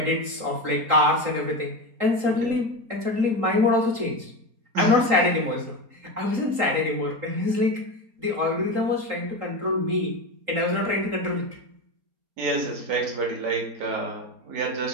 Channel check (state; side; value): late; left; 3.8 ms